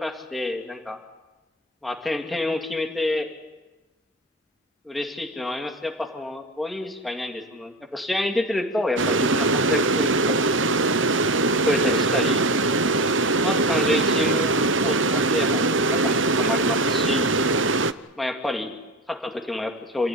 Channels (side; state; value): both; normal; correlation 0.26